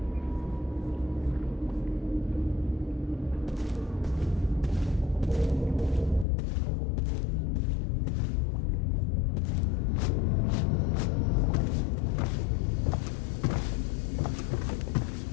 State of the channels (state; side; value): drops out; right; at 6.2 s